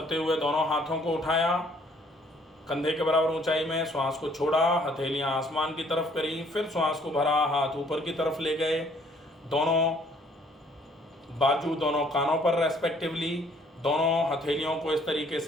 हुए दोनों हाथों को उठाया, कंधे के बराबर ऊंचाई में, श्वास को छोड़ा, हथेलियां आसमान की तरफ करी, फिर श्वास को भरा, हाथ ऊपर की तरफ ले गए, दोनों बाजू दोनों कानों पर रेस्पेक्टिवली, दोनों हथेलियों को इस तरीके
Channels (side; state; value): both; normal; correlation 0.61